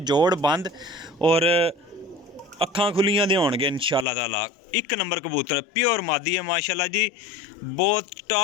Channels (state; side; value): drops out; right; at 4.0 s